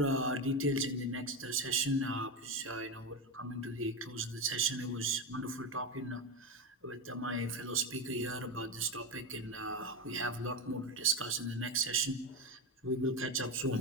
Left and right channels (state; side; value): normal; both; correlation 0.14